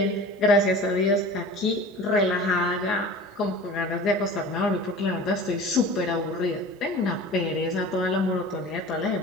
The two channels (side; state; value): both; normal; correlation 0.39